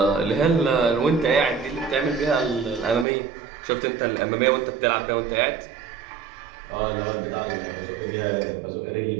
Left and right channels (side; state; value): left; drops out; at 3.1 s